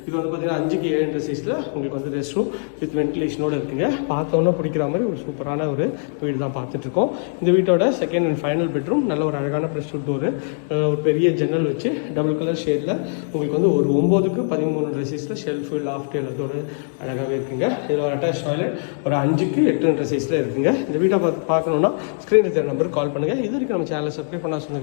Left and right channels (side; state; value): right; silent; digital silence